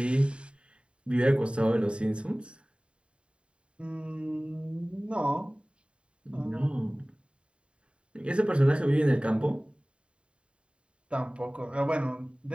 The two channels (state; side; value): late; left; 0.056 ms